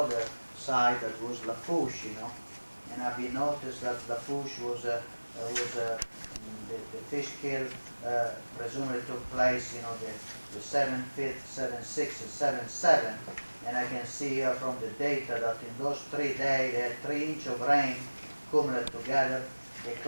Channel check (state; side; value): inverted; both; correlation -1.00